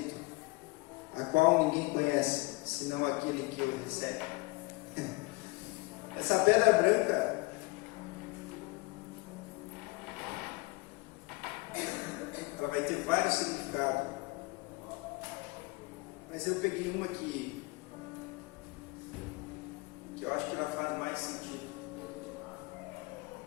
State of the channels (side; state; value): right; quieter; 24.2 dB